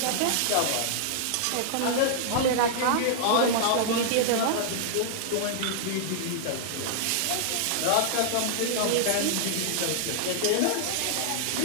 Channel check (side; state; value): both; different; correlation -0.01